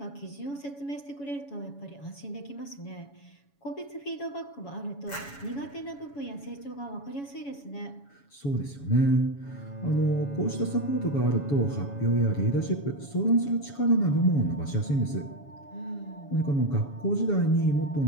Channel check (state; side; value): late; right; 7.1 ms